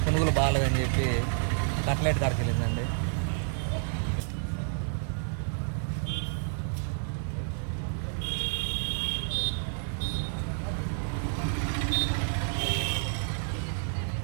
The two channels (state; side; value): silent; left; digital silence